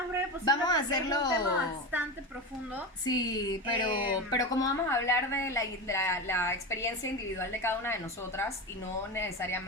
breve posible. Vamos a porque hacerlo- es un tema bastante profundo. Sí, pero como vamos a hablar de la experiencia individual de cada una de nosotras y no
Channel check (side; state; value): both; normal; correlation 0.22